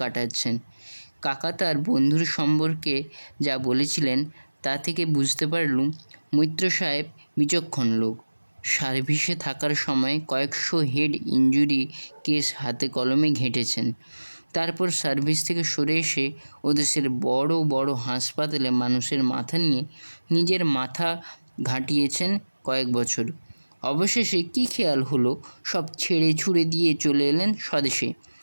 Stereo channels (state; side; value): inverted; both; correlation -1.00